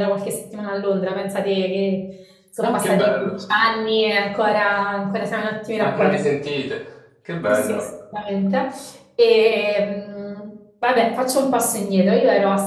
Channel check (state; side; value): identical; both; correlation 1.00